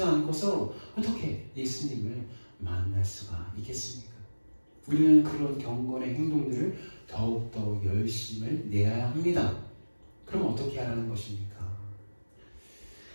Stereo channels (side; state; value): both; inverted; correlation -1.00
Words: 않고서 어떻게 예수님을 만날 수가 있겠습니까? 우리는 그런 경건의 행동들을 더욱더 열심을 내야 합니다. 그럼 어떻게 하라는 것입니까?